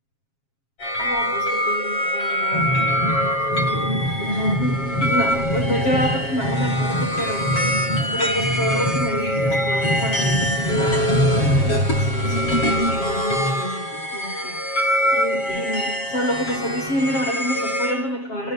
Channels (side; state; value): right; late; 7.4 ms